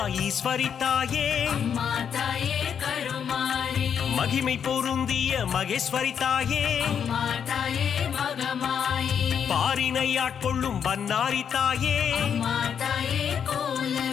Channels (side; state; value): right; quieter; 7.8 dB